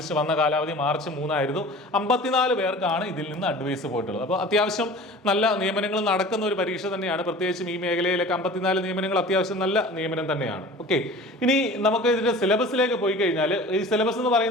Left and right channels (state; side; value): normal; both; correlation 0.41